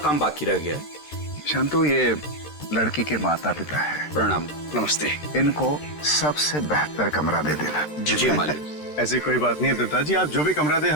बाकी रह गया है। शांतु, ये लड़की के माता पिता है। प्रणाम। नमस्ते। इनको सबसे बेहतर कमरा दे देना। जी मालिक। ऐसी कोई बात नहीं है दत्ता जी, आप जो भी कमरा दे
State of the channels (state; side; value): late; right; 13 ms